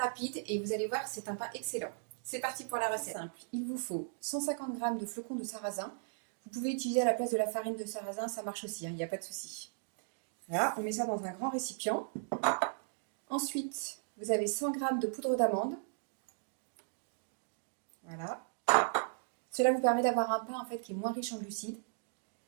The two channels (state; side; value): silent; left; digital silence